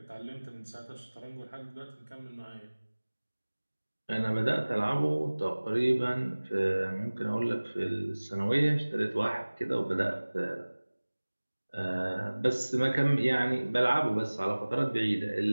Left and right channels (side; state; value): both; inverted; correlation -1.00